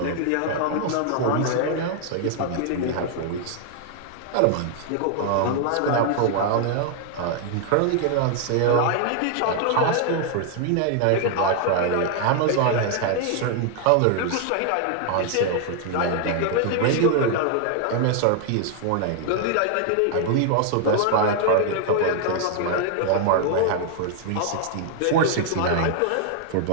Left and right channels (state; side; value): different; both; correlation 0.00